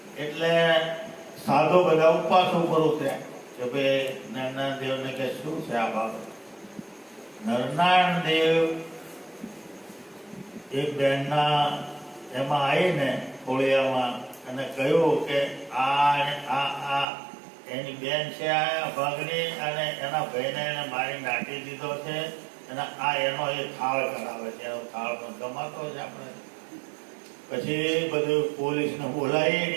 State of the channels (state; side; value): drops out; left; at 17.1 s